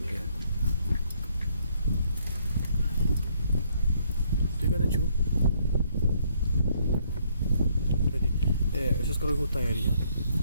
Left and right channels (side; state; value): both; inverted; correlation -0.67